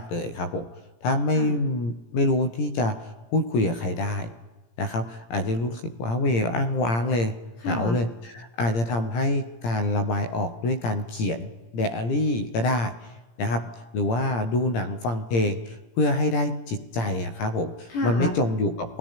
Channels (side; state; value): right; late; 17 ms